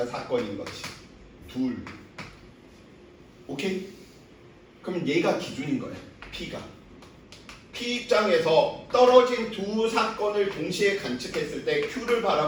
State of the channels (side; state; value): both; identical; correlation 1.00